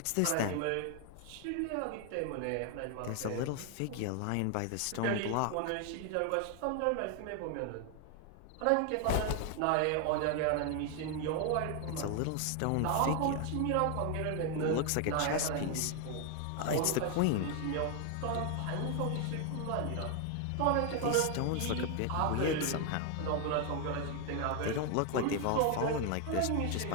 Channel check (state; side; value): different; both; correlation 0.00